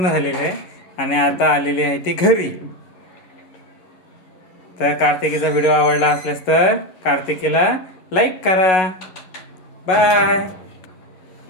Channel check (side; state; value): right; late; 11 ms